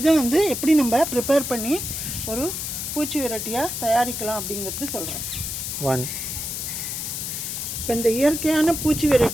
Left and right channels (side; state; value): left; noise; hiss, 4 dB below the sound